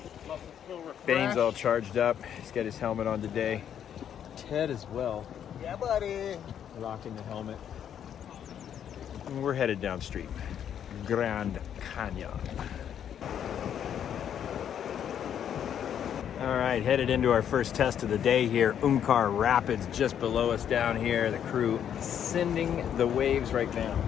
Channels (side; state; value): right; quieter; 9.2 dB